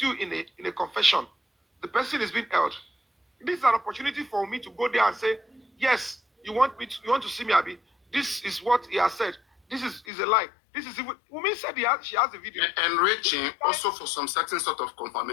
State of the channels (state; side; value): drops out; right; at 10.1 s